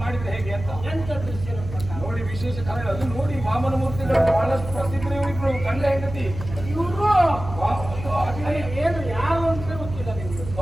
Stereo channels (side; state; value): right; noise; hum, 10 dB below the sound